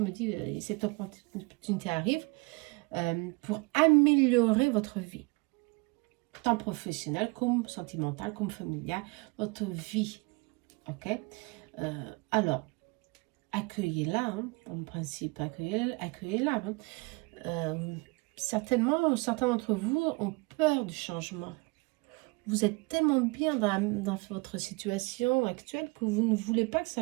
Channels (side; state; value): left; quieter; 27.4 dB